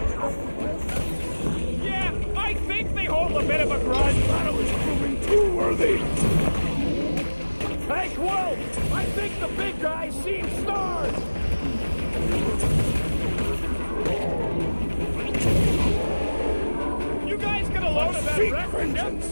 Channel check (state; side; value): inverted; both; correlation -1.00